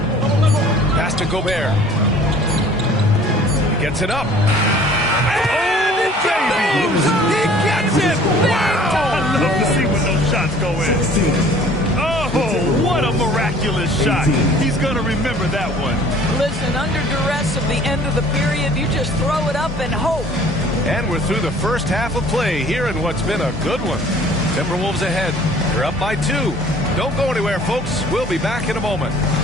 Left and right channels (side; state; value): both; normal; correlation 0.52